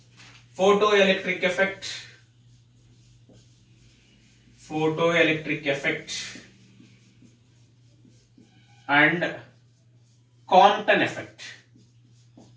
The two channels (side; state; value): both; identical; correlation 1.00